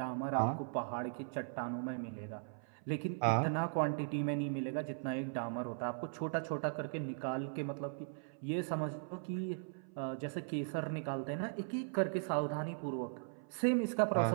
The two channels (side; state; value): left; silent; 52 dB below the other